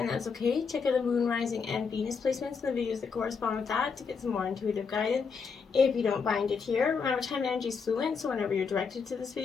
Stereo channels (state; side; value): quieter; right; 5.6 dB